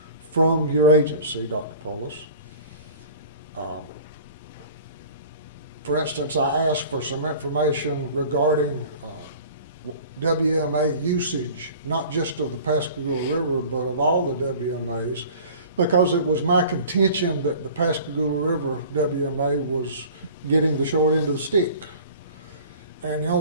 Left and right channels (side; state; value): both; inverted; correlation -0.44